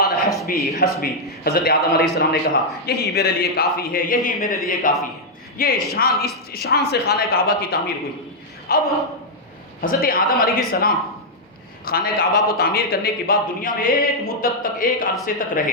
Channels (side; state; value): both; normal; correlation -0.03